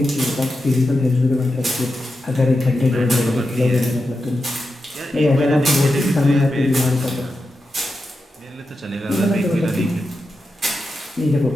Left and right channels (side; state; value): both; normal; correlation 0.89